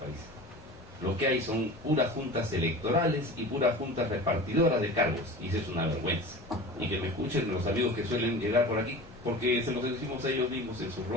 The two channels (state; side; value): normal; both; correlation 0.36